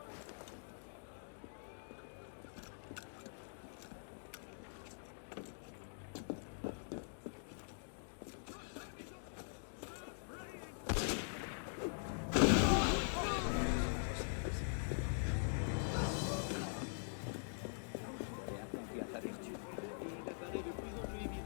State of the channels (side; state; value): right; silent; digital silence